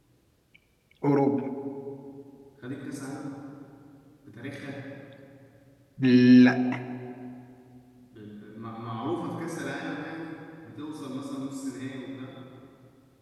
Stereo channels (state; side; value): identical; both; correlation 1.00